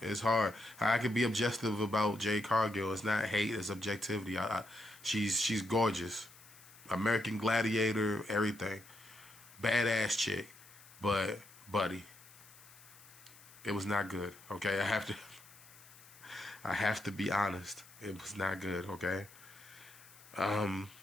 It's hard. I can be objective about Jade Cargill. It's not hate, it's objectivity. She's gorgeous. American Gladiator, everything. Badass chick, but buddy, it was not good. Okay, I have to be honest. It was not good. Okay,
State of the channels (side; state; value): left; noise; hiss, 22 dB below the sound